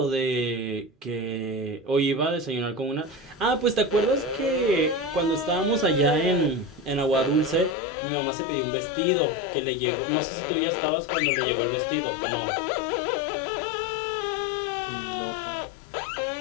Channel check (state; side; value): drops out; right; at 7.8 s